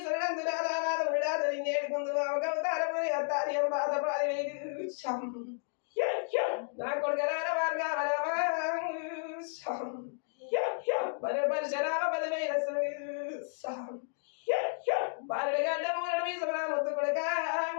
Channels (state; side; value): silent; right; digital silence